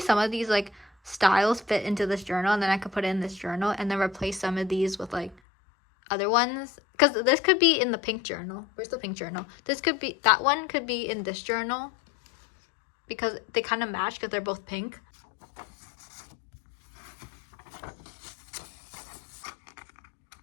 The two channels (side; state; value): right; drops out; at 5.4 s